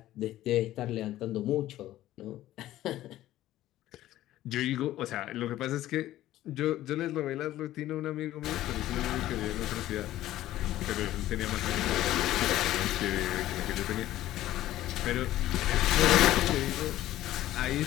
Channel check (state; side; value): quieter; right; 14.4 dB